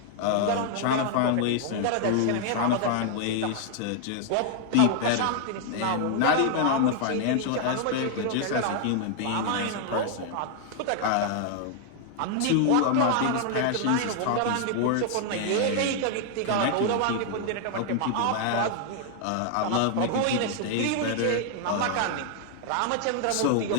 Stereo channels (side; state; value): both; different; correlation 0.00